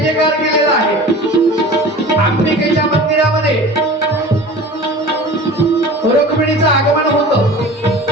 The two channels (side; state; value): both; normal; correlation 0.38